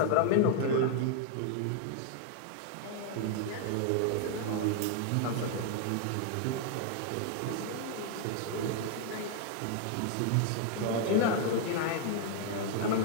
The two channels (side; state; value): both; different; correlation 0.00